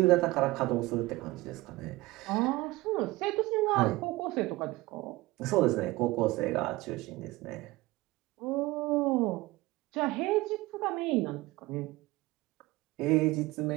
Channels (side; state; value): left; quieter; 19.9 dB